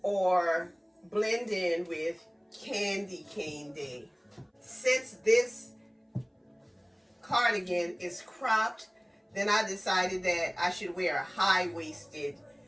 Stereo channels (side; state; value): both; identical; correlation 1.00